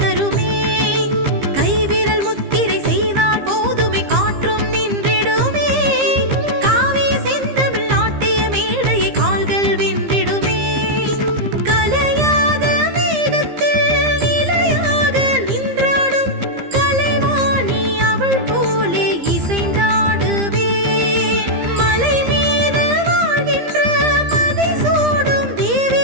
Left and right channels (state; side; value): late; left; 15 ms